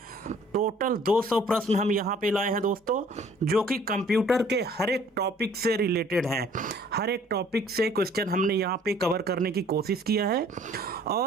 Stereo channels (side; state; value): both; normal; correlation 0.56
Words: टोटल 200 प्रश्न हम यहाँ पे लाए हैं दोस्तों, जो कि कंप्यूटर के हर एक टॉपिक से रिलेटेड हैं। हर एक टॉपिक से क्वेश्चन हमने यहाँ पे कवर करने की कोशिश किया है,